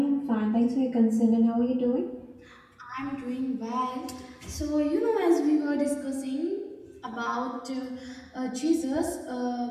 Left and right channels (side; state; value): both; identical; correlation 1.00